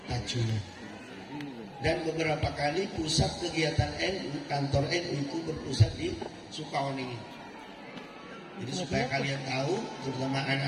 Tajungan. Dan beberapa kali pusat kegiatan NU, kantor NU itu berpusat di Sukawoning. Jadi supaya kalian tahu, terutama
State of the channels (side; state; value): both; identical; correlation 1.00